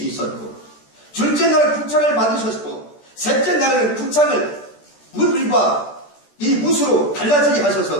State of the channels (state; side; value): late; right; 14 ms